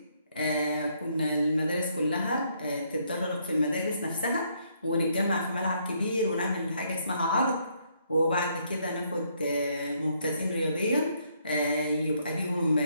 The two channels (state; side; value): inverted; both; correlation -0.71